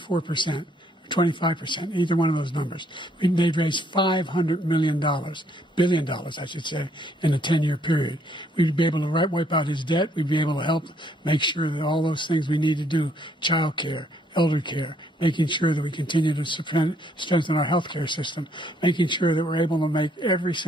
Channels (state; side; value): normal; both; correlation 0.68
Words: 25%, either one of those numbers, they'd raise $500 billion, I should say, in a 10-year period. We'd be able to wipe out his debt. We'd be able to help make sure that all those things we need to do, child care, elder care, making sure that we continue to strengthen our health care system, making sure that we're able to make every